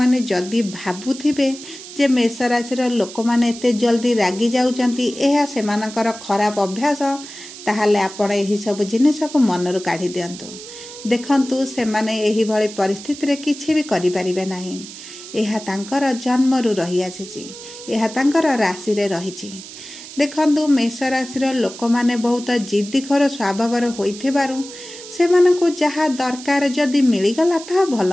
ଯଦି ଭାବୁଥିବେ ଯେ ମେଷ ରାଶିର ଲୋକମାନେ ଏତେ ଜଲ୍ଦି ରାଗି ଯାଉଛନ୍ତି, ଏହା ସେମାନଙ୍କର ଖରାପ ଅଭ୍ୟାସ, ତାହେଲେ ଆପଣ ଏହିସବୁ ଜିନିଷକୁ ମନରୁ କାଢ଼ି ଦିଅନ୍ତୁ। ଦେଖନ୍ତୁ, ସେମାନେ ଏହିଭଳି ପରିସ୍ଥିତିରେ କିଛି ବି କରିପାରିବେ ନାହିଁ। ଏହା ତାଙ୍କର ଜନ୍ମରୁ ରହିଆସିଛି। ଏହା ତାଙ୍କର ରାଶିରେ ରହିଛି। ଦେଖନ୍ତୁ, ମେଷ ରାଶିର ଲୋକମାନେ ବହୁତ ଜିଦ୍ଦିଖୋର ସ୍ୱଭାବର ହୋଇଥିବାରୁ ସେମାନଙ୍କୁ ଯାହା ଦରକାର ଯଦି ମିଳିଗଲା ତାହା ଭଲ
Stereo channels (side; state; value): right; noise; hiss, 14 dB below the sound